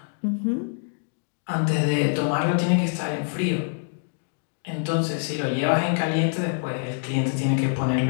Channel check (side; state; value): right; silent; digital silence